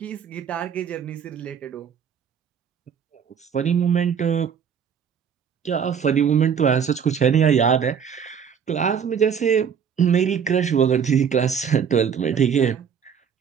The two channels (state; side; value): quieter; left; 7.4 dB